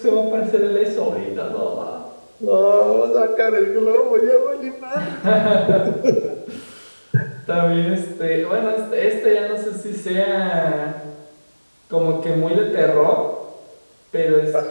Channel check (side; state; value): both; inverted; correlation -1.00